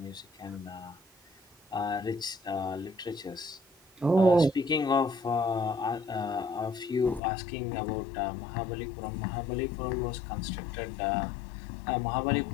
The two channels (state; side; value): drops out; right; at 7.2 s